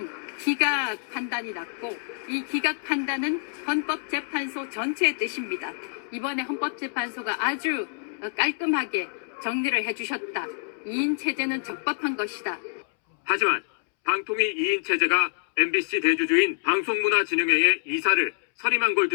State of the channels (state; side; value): silent; right; 61 dB below the other